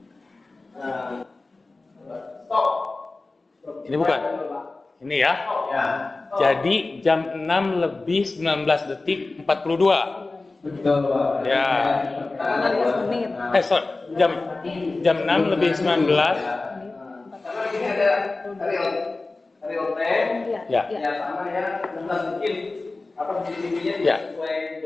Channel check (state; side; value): quieter; right; 3.4 dB